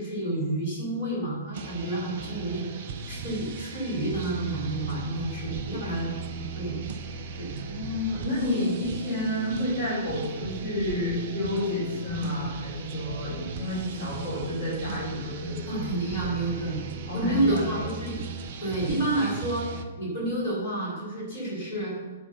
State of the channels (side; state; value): both; inverted; correlation -0.32